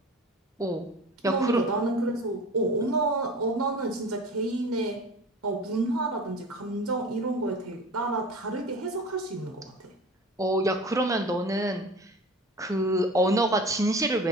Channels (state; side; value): normal; both; correlation 0.38